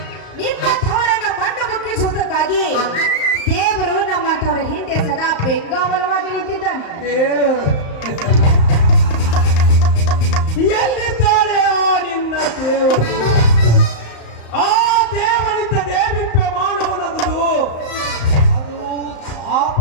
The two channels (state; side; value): late; right; 35 ms